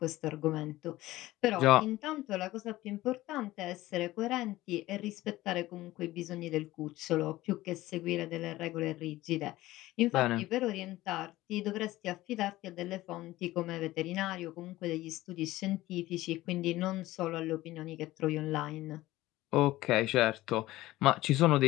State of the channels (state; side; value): quieter; right; 17.1 dB